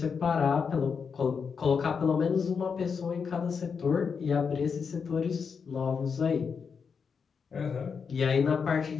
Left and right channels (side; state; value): right; quieter; 6.0 dB